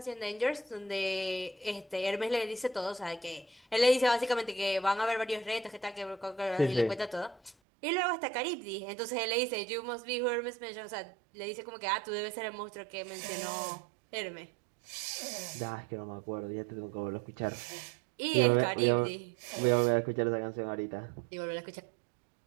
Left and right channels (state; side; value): drops out; left; at 7.6 s